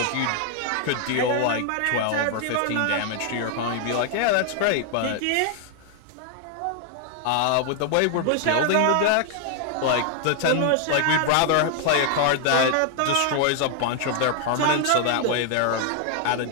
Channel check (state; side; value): different; both; correlation 0.00